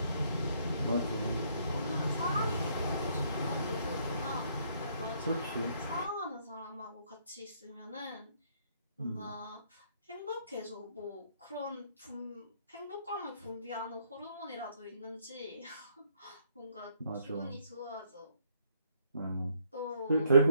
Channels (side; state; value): both; inverted; correlation -0.68